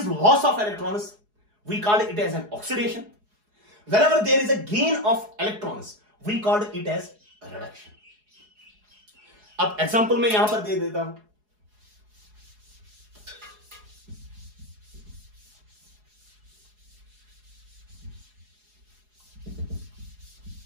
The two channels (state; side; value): late; left; 4.8 ms